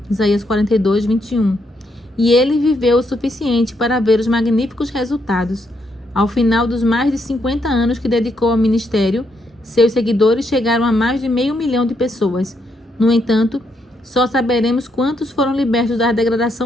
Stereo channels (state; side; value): normal; both; correlation 0.77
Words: Isaías 42:21. E ele viveu o suficiente para ver os magníficos resultados. Ao final dos mais de 50 anos que dedicou ao ministério, seus seguidores chegaram a mais de 500 mil de pessoas. No entanto, só saberemos quantos foram libertos da